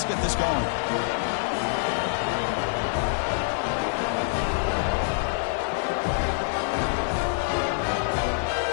get this going.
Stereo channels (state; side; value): silent; right; digital silence